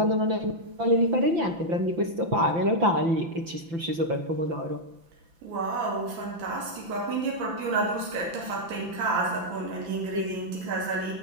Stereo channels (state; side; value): late; left; 5.9 ms